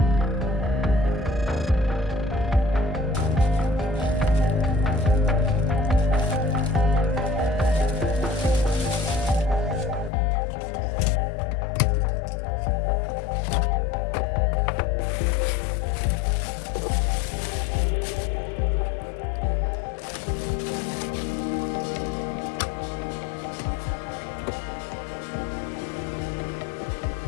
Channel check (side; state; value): right; drops out; at 10.1 s